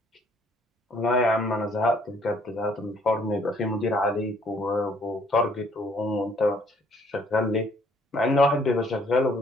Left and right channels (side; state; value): both; normal; correlation 0.63